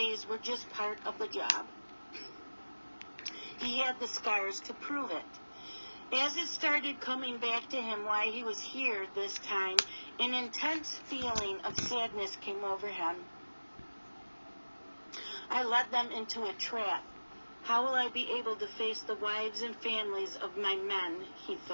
were just part of the job. He had the scars to prove it. As it started coming back to him why he was here this time, an intense feeling of sadness came over him. I led them into a trap. How will I be able to face the wives and families of my men, he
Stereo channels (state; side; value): inverted; both; correlation -1.00